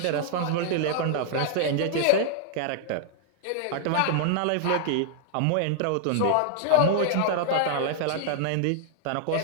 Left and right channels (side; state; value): both; different; correlation -0.01